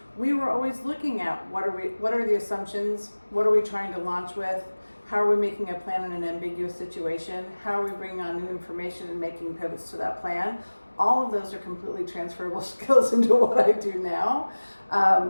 we were always looking at what are the assumptions, what are we trying to launch with, how are we making a plan in an ambiguous situation, how are we bringing on new information and making pivots to that plan. All of those are completely transferable skills into what I do now.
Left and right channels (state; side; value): inverted; both; correlation -1.00